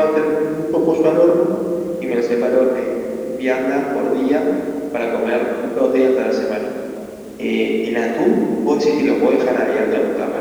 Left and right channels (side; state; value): both; identical; correlation 1.00